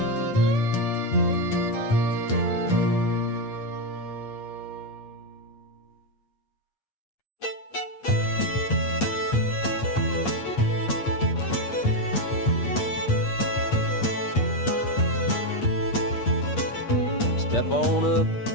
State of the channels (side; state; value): right; late; 8.5 ms